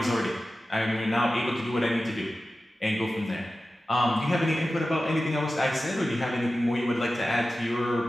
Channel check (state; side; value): normal; both; correlation 0.94